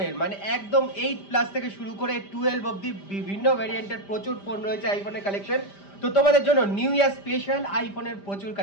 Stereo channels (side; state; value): right; late; 5.0 ms